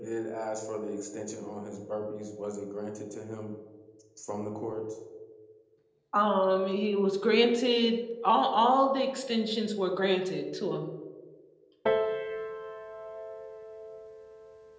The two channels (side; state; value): both; identical; correlation 1.00